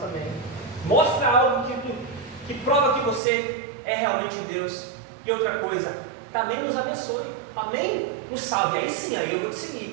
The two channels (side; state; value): left; drops out; at 3.2 s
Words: Mostra algo que prova que você é realmente Deus. E outra coisa, também nos abençoe, também nos salve. Aí sim, aí eu vou te